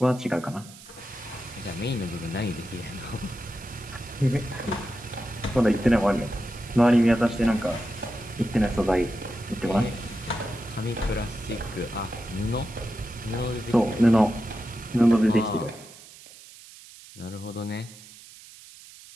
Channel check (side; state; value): right; noise; hiss, 19 dB below the sound